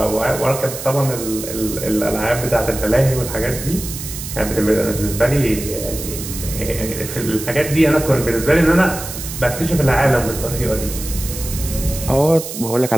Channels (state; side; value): noise; right; hiss, 9 dB below the sound